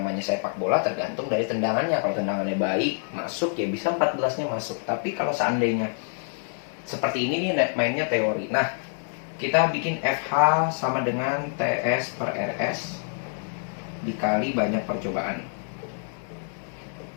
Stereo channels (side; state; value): right; silent; 61 dB below the other